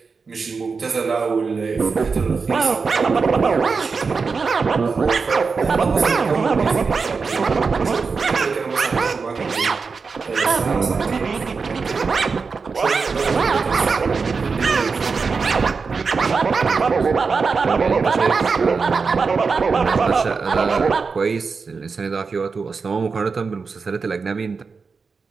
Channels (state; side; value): quieter; left; 4.9 dB